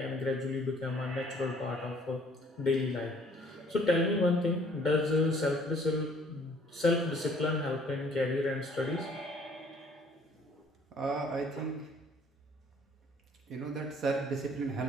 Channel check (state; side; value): normal; both; correlation 0.59